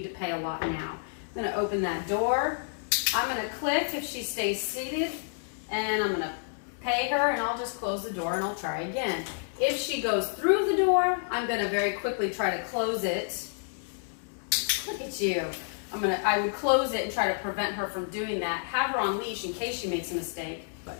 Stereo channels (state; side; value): silent; right; digital silence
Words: to pay a lot now. I'm going to open that door. I'm going to click if she stays seated, and I'm going to pay her, and I'll just close the door and I'll try again. If she goes through the door, I'm going to very quickly try to close it. Look at you. I would close it and try to prevent her from doing that. Have her on leash in case she makes a mistake. But